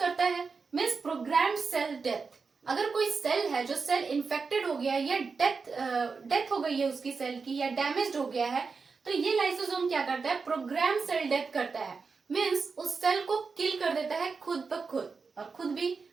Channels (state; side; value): quieter; left; 4.9 dB